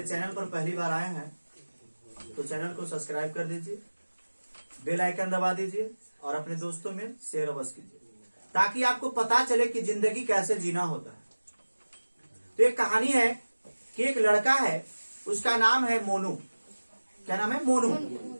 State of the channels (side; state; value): both; inverted; correlation -1.00